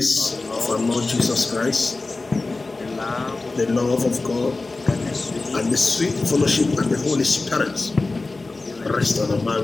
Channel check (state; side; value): quieter; right; 3.4 dB